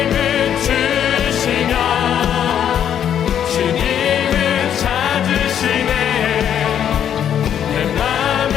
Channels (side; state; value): right; quieter; 9.4 dB